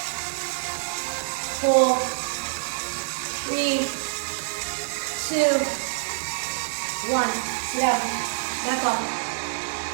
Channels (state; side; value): silent; left; 61 dB below the other